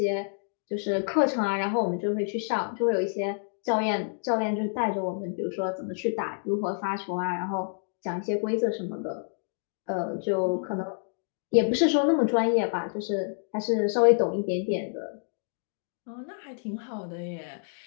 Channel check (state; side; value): silent; right; digital silence